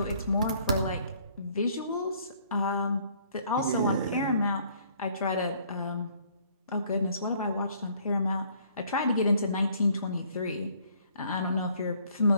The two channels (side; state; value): both; inverted; correlation -0.62